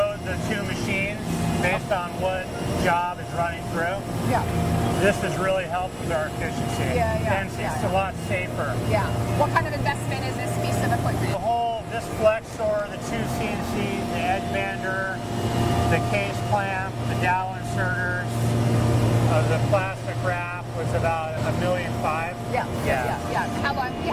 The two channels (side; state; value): both; identical; correlation 1.00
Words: the 2 machines based on what job is running through. This has really helped with our efficiency. And it's a lot safer. What kind of investment is this piece of equipment? This flex store, the 2 CNCs, the edge bander, the case clamp, the dowel inserters, the plastic wrap was about $1.5 million. How long have you